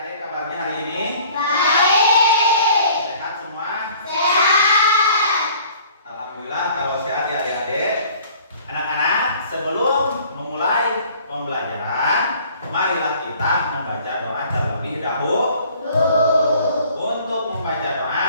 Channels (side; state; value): both; inverted; correlation -0.53